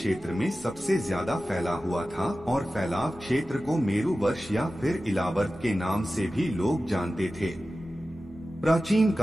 में सबसे ज्यादा फैला हुआ था और फैलाव क्षेत्र को मेरु वर्ष या फिर इलावर्त के नाम से भी लोग जानते थे। प्राचीन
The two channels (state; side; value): noise; right; hum, 25 dB below the sound